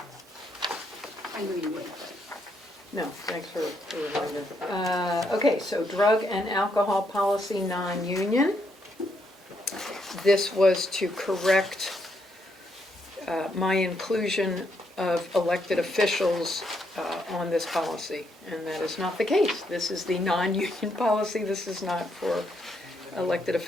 I knew you would, but. No, thanks for the reminder. Okay, so drug and alcohol policy non-union. This was to correct my inclusion of elected officials on this policy, and that is not the case. This is the non-union policy, this is not for elected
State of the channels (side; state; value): both; normal; correlation 0.76